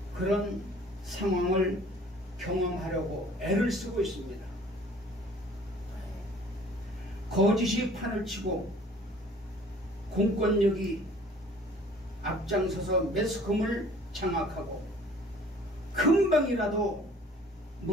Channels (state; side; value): normal; both; correlation 0.52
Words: 그런 상황을 경험하려고 애를 쓰고 있습니다. 거짓이 판을 치고 공권력이 앞장서서 매스컴을 장악하고 금방이라도